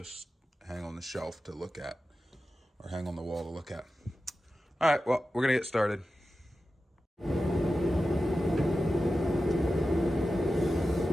hang on the shelf to look at, or hang on the wall to look at. All right, well, we're gonna get started.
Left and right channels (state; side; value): normal; both; correlation 0.93